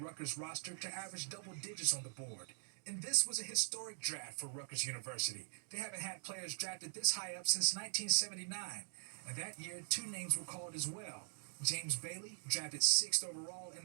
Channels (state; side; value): silent; left; digital silence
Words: roster to average double digits on the board. And this was a historic draft for Rutgers University. They haven't had players drafted this high up since 1979. And that year, 2 names were called as well. James Bailey, drafted 6th overall,